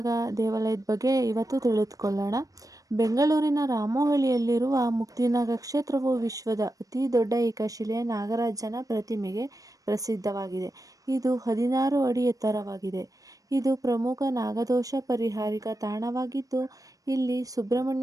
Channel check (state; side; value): late; left; 0.17 ms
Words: ದೇವಾಲಯದ ಬಗ್ಗೆ ಇವತ್ತು ತಿಳಿದುಕೊಳ್ಳೋಣ. ಬೆಂಗಳೂರಿನ ರಾಮೋಹಳ್ಳಿಯಲ್ಲಿರುವ ಮುಕ್ತಿನಾಗ ಕ್ಷೇತ್ರವು ವಿಶ್ವದ ಅತಿ ದೊಡ್ಡ ಏಕಶಿಲೆಯ ನಾಗರಾಜನ ಪ್ರತಿಮೆಗೆ ಪ್ರಸಿದ್ಧವಾಗಿದೆ. ಇದು 16 ಅಡಿ ಎತ್ತರವಾಗಿದೆ. ಇದು ಪ್ರಮುಖ ನಾಗದೋಷ ಪರಿಹಾರಿಕ ತಾಣವಾಗಿದ್ದು, ಇಲ್ಲಿ